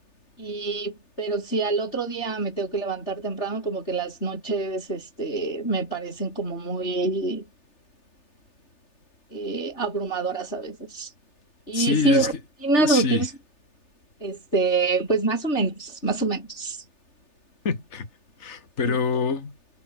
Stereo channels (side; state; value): right; late; 3.3 ms